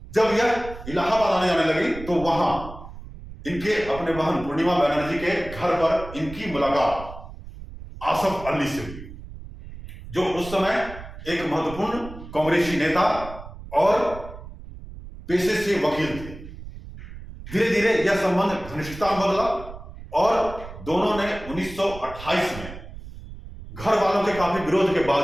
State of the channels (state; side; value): noise; right; rumble, 14 dB below the sound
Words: जब यह इलाहाबाद आने जाने लगी तो वहां इनके अपने बहन पूर्णिमा बनर्जी के घर पर इनकी मुलाकात आसफ अली से हुई, जो उस समय एक महत्वपूर्ण कांग्रेसी नेता और पेशे से वकील थे। धीरे धीरे यह संबंध घनिष्ठता बदला और दोनों ने 1928 में घर वालों के काफी विरोध के